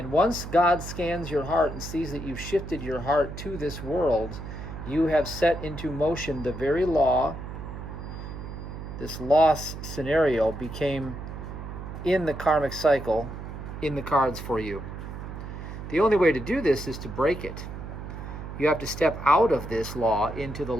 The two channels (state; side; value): noise; right; hum, 9 dB below the sound